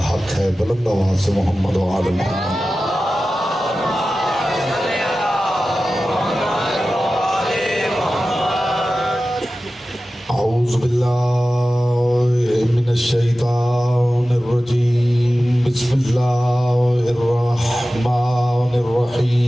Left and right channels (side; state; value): both; normal; correlation 0.95